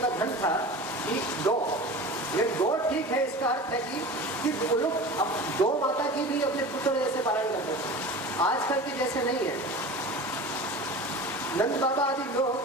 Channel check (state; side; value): normal; both; correlation 0.34